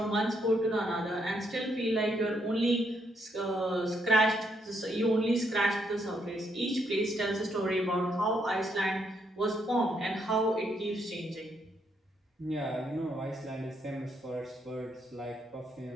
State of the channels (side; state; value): both; normal; correlation 0.76